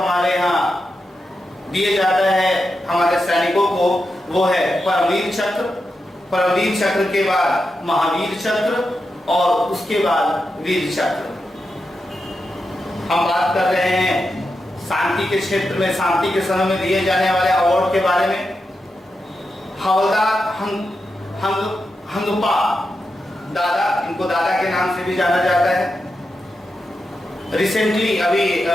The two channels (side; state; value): both; normal; correlation 0.88